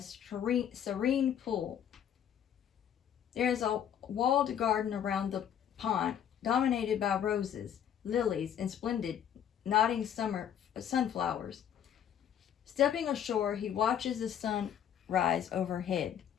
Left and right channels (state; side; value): quieter; right; 9.4 dB